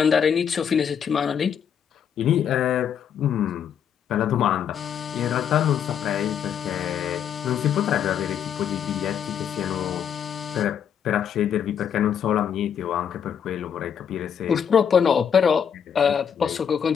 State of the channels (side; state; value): right; quieter; 8.1 dB